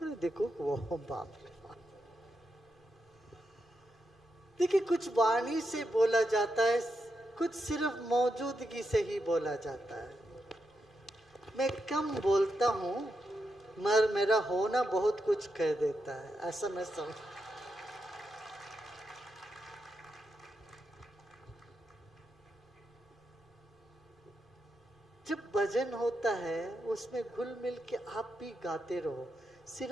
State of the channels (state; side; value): normal; both; correlation 0.85